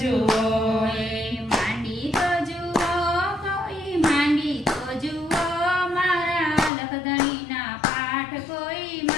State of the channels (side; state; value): right; drops out; at 6.7 s